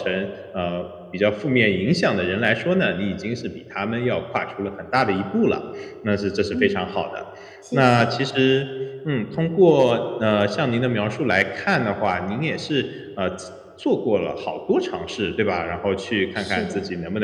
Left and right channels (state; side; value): identical; both; correlation 1.00